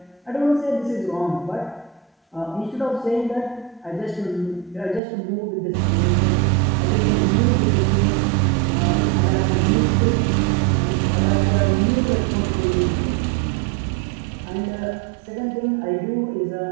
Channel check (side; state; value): left; drops out; at 5.0 s